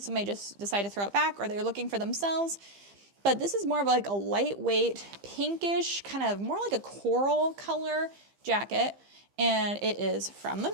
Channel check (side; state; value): left; late; 15 ms